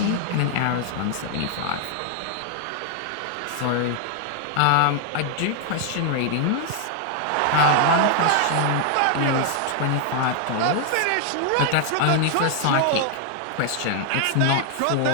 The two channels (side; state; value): both; different; correlation 0.00